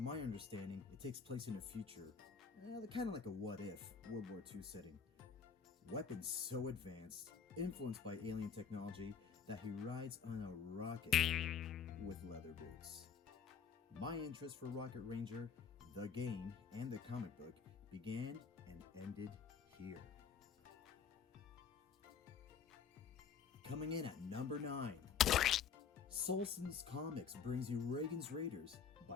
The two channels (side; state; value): right; quieter; 6.7 dB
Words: my understanding, it takes place in a future, kind of like a what-if World War II setting. Weapons so advanced, influenced by alien technology, that he rides on a rocket with leather boots. My interest for Rocket Ranger, the game, and the comic book began and ended here. Coming in at number 9. Solson's Comics brings you Reagans Raiders